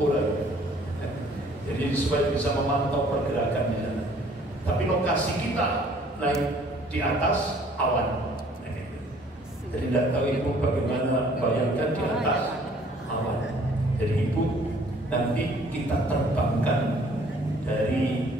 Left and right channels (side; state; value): both; normal; correlation 0.57